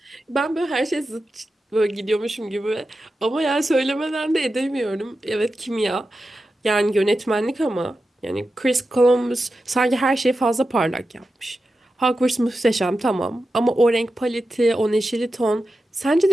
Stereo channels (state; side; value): normal; both; correlation 0.91